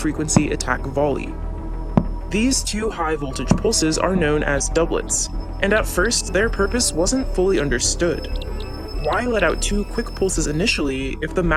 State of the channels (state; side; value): identical; both; correlation 1.00